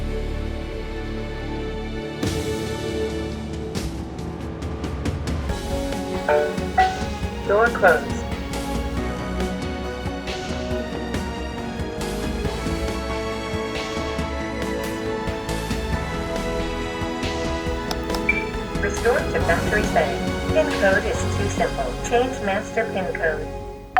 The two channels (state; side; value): identical; both; correlation 1.00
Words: Door closed. Restore to factory setting. PIN code is too simple. Change master PIN code.